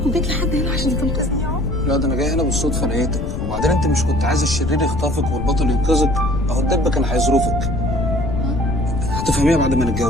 وجيت لحد هنا عشان تنقذني يا عمر. لا ده انا جاي هنا بالصدفه لقيتك، وبعدين انت مش كنت عايز الشرير يخطفك والبطل ينقذك؟ اهو الدب كان هيظروفك. هتفهميها بعد ما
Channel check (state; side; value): noise; left; rumble, 5 dB below the sound